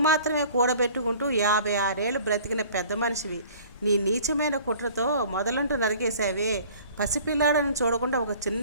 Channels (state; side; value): inverted; both; correlation -0.49